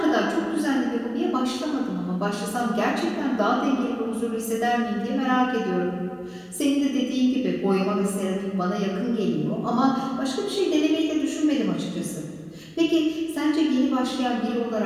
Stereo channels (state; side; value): identical; both; correlation 1.00